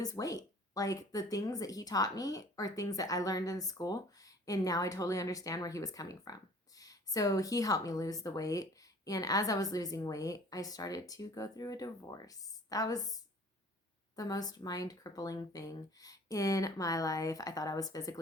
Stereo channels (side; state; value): both; normal; correlation 0.50